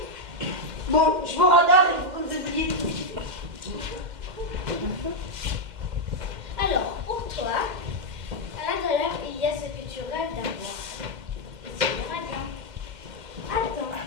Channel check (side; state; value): left; late; 2.1 ms